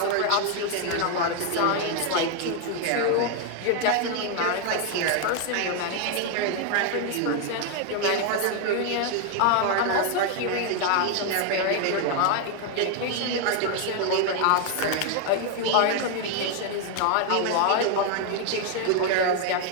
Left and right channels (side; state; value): both; different; correlation 0.01